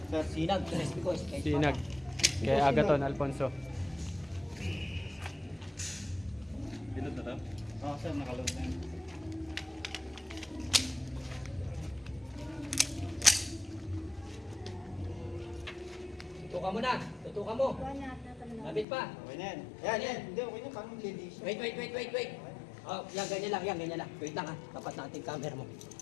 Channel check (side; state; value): right; drops out; at 18.9 s